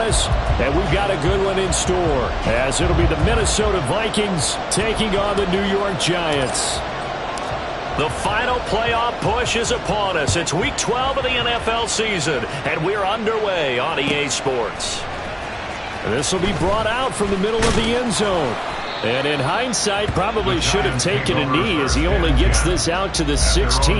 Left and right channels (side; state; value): both; identical; correlation 1.00